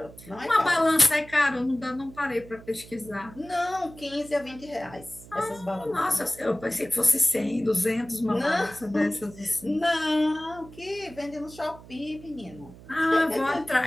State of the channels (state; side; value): noise; right; hum, 19 dB below the sound